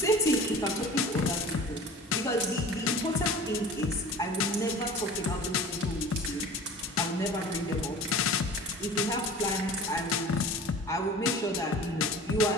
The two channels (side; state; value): both; normal; correlation 0.40